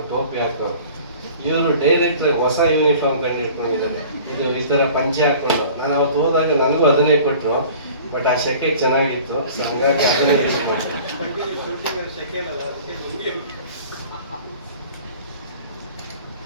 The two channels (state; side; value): inverted; both; correlation -0.46